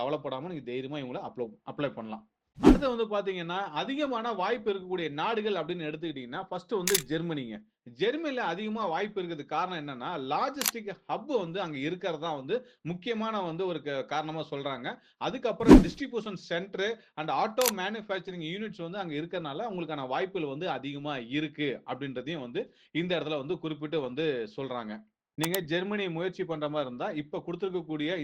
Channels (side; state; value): both; identical; correlation 1.00